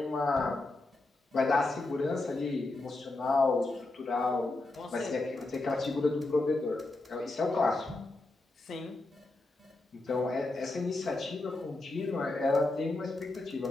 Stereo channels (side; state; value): right; quieter; 3.0 dB